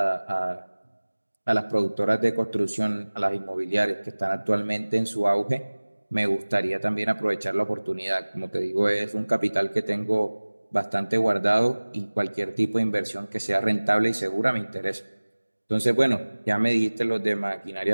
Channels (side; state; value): both; inverted; correlation -1.00